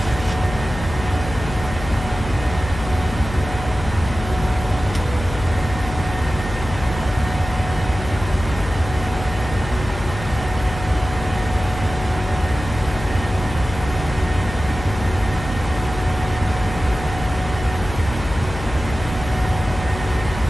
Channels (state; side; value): noise; left; hum, 9 dB below the sound